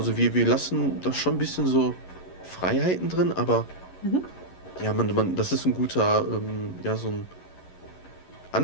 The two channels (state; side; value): late; right; 11 ms